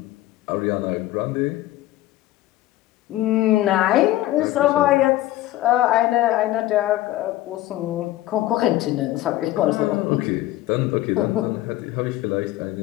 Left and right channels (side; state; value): right; quieter; 15.5 dB